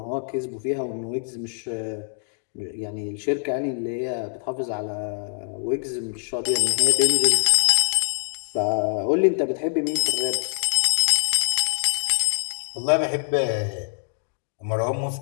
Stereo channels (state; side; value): silent; right; digital silence